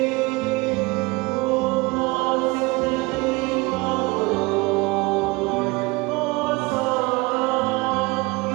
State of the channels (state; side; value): quieter; left; 24.5 dB